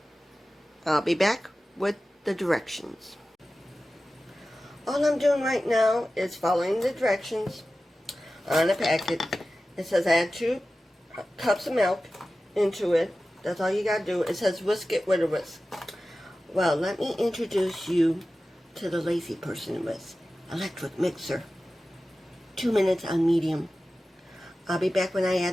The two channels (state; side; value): normal; both; correlation 0.95